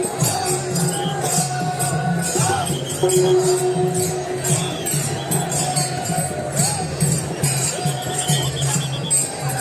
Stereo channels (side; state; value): both; identical; correlation 1.00